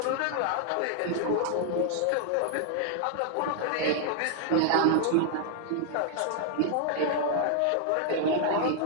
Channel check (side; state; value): both; different; correlation 0.00